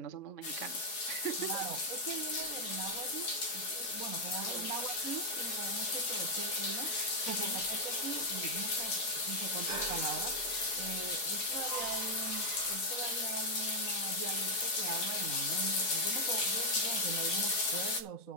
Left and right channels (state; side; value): late; right; 4.7 ms